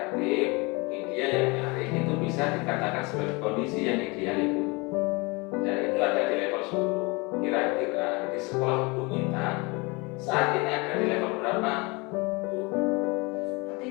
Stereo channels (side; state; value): right; quieter; 27.0 dB